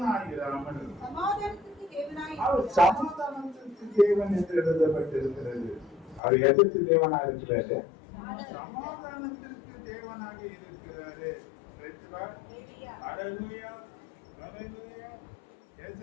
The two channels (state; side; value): drops out; right; at 6.2 s